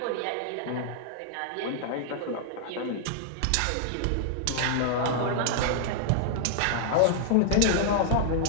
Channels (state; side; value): different; both; correlation -0.01